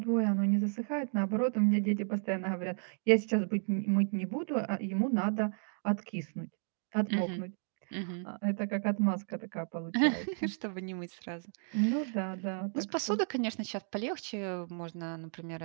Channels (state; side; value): silent; left; 56 dB below the other